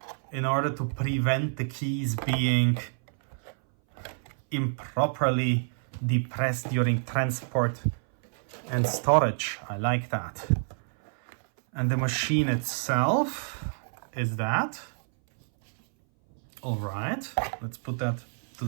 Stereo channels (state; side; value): silent; left; 59 dB below the other